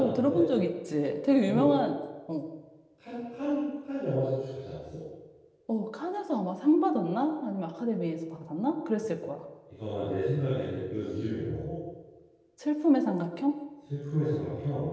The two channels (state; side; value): identical; both; correlation 1.00